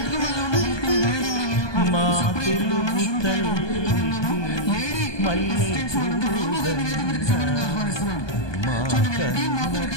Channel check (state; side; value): late; right; 1.2 ms